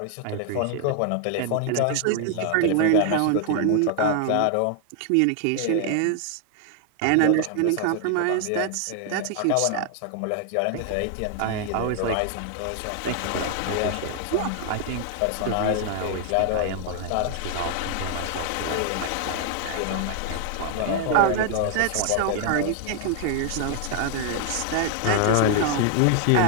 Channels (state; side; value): different; both; correlation 0.00